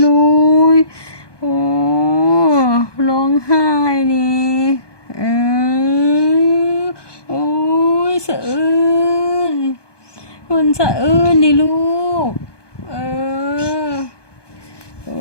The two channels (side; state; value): right; late; 1.2 ms